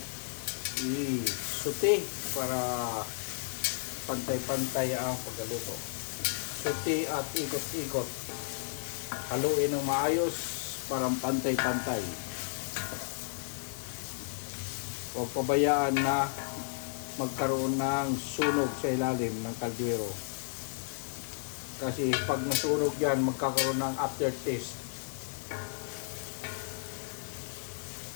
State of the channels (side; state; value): right; silent; digital silence